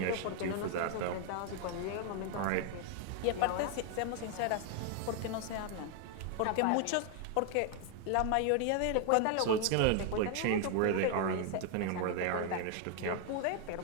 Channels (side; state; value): both; different; correlation 0.01